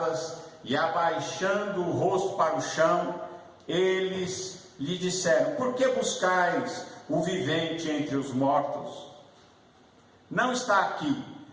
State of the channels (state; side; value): identical; both; correlation 1.00